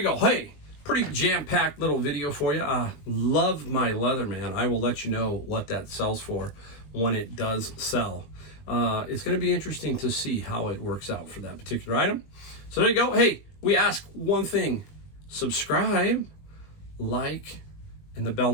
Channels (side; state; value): right; late; 20 ms